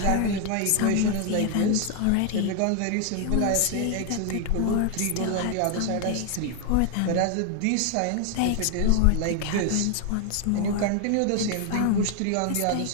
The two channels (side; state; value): both; different; correlation 0.01